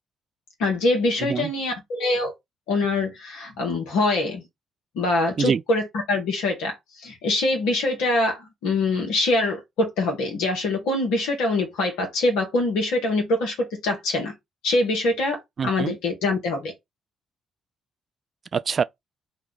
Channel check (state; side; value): normal; both; correlation 0.61